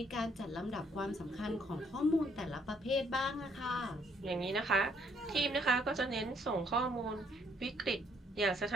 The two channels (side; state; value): both; normal; correlation 0.68